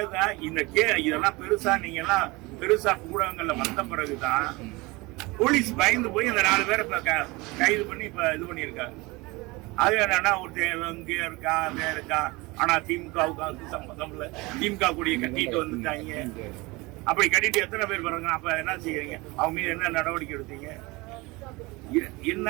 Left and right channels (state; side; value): quieter; left; 23.7 dB